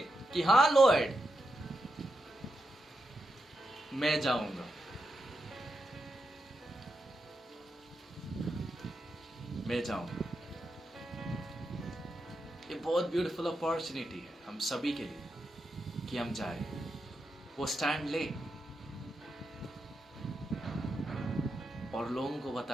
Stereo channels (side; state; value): both; normal; correlation 0.86